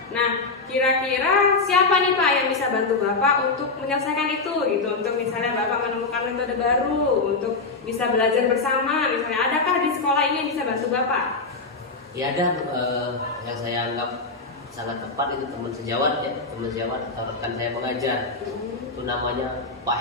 Nah, kira-kira siapa nih Pak yang bisa bantu Bapak untuk menyelesaikan itu gitu? Untuk misalnya Bapak menemukan metode baru untuk bisa belajar bersama, misalnya adakah di sekolah ini yang bisa bantu Bapak? Ya ada, yang saya anggap sangat tepat itu teman sejawat ya, teman sejawat atau rekan saya mengajar. Itu namanya Pak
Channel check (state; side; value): quieter; right; 3.9 dB